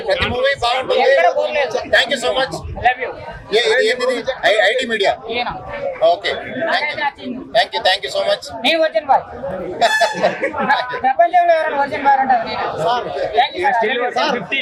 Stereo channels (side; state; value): both; identical; correlation 1.00